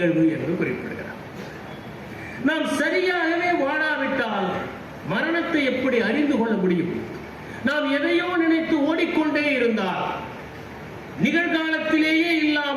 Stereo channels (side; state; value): both; identical; correlation 1.00